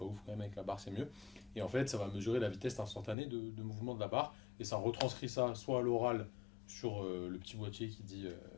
ouf quand même, avec la barre c'est mieux. Et en fait, ça va mesurer la vitesse instantanée de mouvement de la barre, et ça retranscrit ça soit à l'oral sur le petit boîtier qui dit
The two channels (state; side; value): drops out; right; at 3.2 s